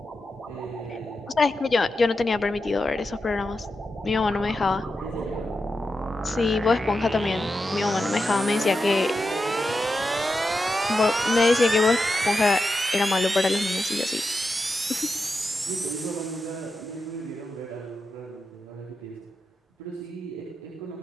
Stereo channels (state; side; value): normal; both; correlation 0.89